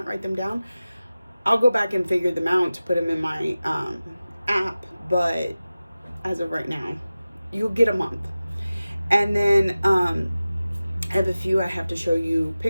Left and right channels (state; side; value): inverted; both; correlation -0.96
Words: write them down. I'll go back and figure them out to put them in my app, but as of right now, you'll get a month. And then I have a few I have to show you